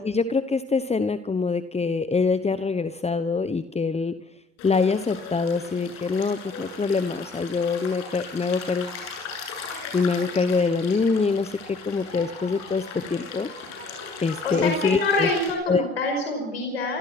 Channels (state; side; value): quieter; right; 3.9 dB